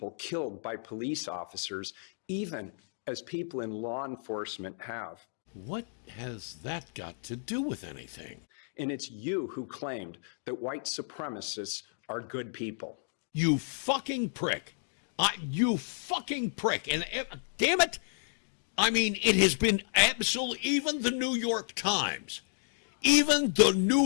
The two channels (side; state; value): right; silent; digital silence